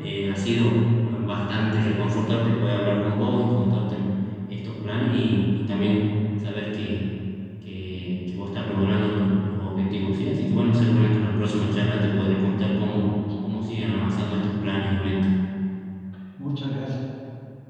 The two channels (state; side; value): identical; both; correlation 1.00